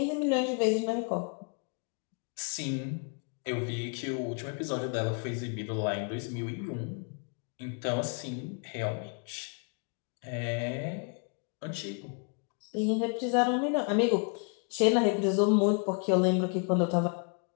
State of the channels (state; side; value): quieter; right; 39.3 dB